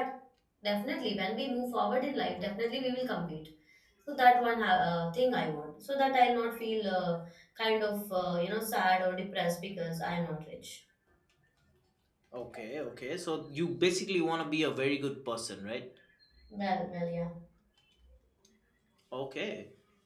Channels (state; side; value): identical; both; correlation 1.00